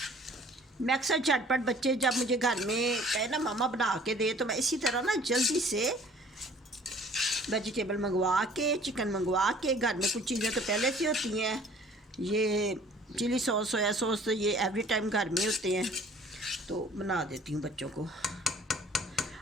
मैं अक्सर झटपट बच्चे जब मुझे घर में कहे ना मामा बना के दे, तो मैं इसी तरह ना जल्दी से वेजिटेबल मंगवा के, चिकन मंगवा के, घर में कुछ चीज़ें तो पहले से होती हैं, ये चिली सॉस, सोया सॉस, तो ये एवरी टाइम घर में होते हैं, तो बना देती हूँ बच्चों को।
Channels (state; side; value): normal; both; correlation 0.53